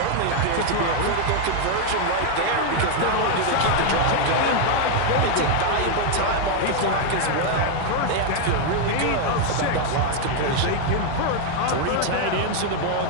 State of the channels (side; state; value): both; different; correlation 0.01